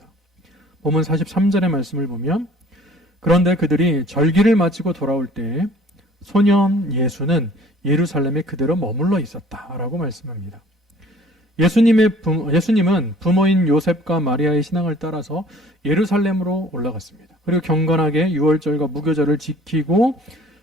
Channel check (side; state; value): both; normal; correlation 0.52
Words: 본문 43절의 말씀을 보면 그런데 그들이 절기를 마치고 돌아올 때 소년 예수는 예루살렘에 그대로 머물러 있었다라고 말씀합니다. 예수님은 부모인 요셉과 마리아의 신앙을 따라서 예루살렘으로 올라갔습니다. 그리고 경건하게 유월절과 무교절을 지키고